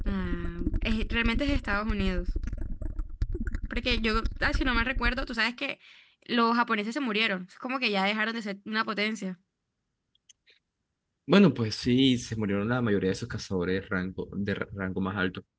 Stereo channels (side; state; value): both; identical; correlation 1.00